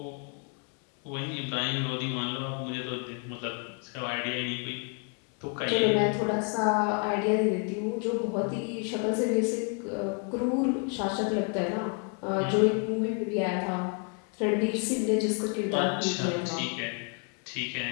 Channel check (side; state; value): right; quieter; 38.2 dB